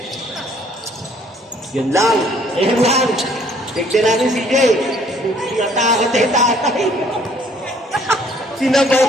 Yun lang. Ayun lang. Tignan natin si Jay. Tinatakot na yung tatay.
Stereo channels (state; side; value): normal; both; correlation 0.60